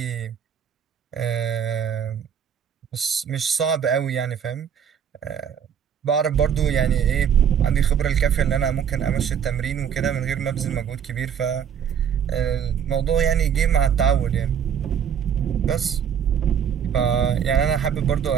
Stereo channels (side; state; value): left; quieter; 8.0 dB